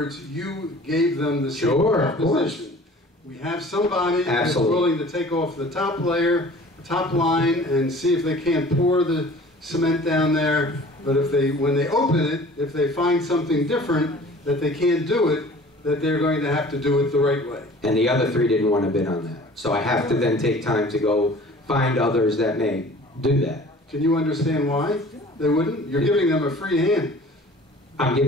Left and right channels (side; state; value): both; normal; correlation 0.47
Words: you gave them the same proposition. We have somebody that's willing to take off the top layer, top line, and see if they can't pour the cement down there. But if when they open it, if they find something different, that they can't do it, that they're going to have to do it the right way. And the other 3 didn't want to bid on that. So I have to then take time to go find others that may do that. Can you understand why they wouldn't? You're giving them a free hand. I'm